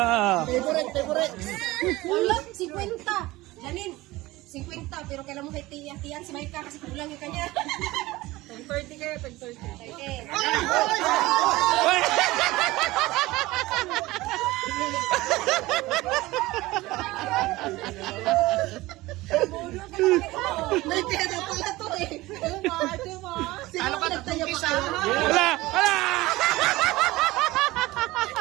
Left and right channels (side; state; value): left; quieter; 19.2 dB